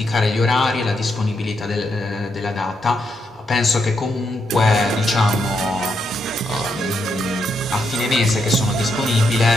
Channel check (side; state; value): both; normal; correlation 0.80